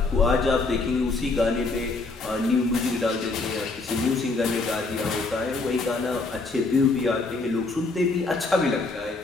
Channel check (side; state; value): right; quieter; 3.6 dB